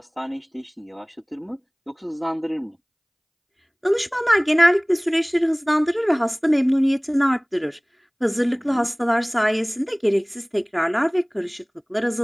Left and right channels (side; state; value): both; identical; correlation 1.00